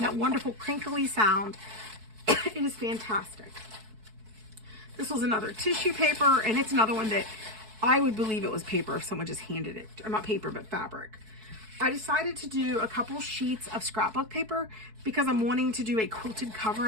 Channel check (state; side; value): late; left; 4.6 ms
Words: wonderful crinkly sound. It is fantastic. This was another tissue paper, and it's another one that I would believe it was paper if someone just handed it, or not paper, but fabric. I decided to do a couple sheets of scrapbook paper because I'm wanting to do a quilted cover